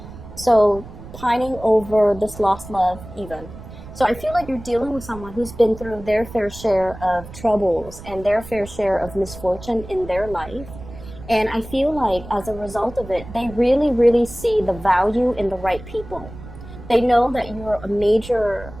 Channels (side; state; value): right; noise; rumble, 15 dB below the sound